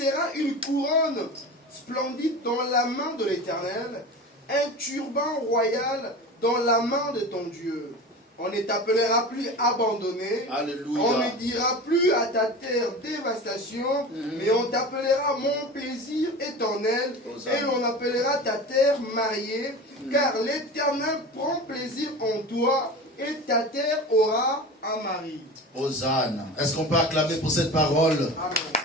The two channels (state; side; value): normal; both; correlation 0.32